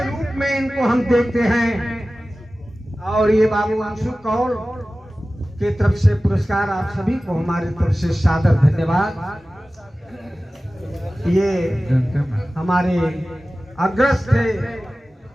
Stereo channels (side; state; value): both; normal; correlation 0.96